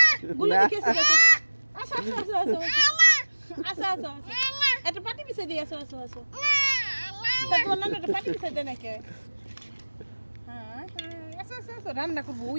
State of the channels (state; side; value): inverted; both; correlation -1.00